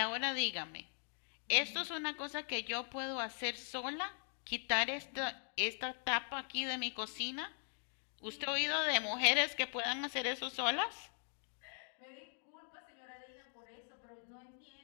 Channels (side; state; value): right; silent; 51 dB below the other